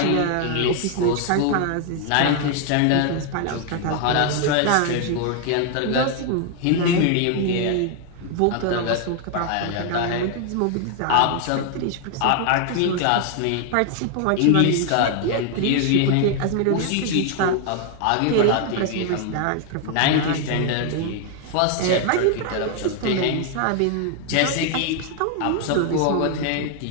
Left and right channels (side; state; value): both; different; correlation 0.00